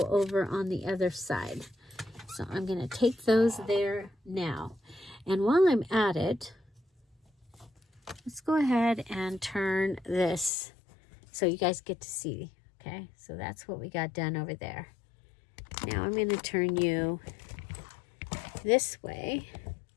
over on the other side. So I'm going to take those there now. And while I'm at it, let's go ahead and turn this so you guys get to see, okay? So that's what we got done over there. Now I'm going to turn you this way,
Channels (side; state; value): right; drops out; at 10.5 s